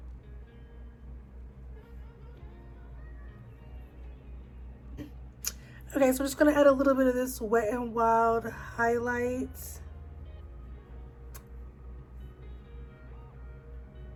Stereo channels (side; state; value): both; identical; correlation 1.00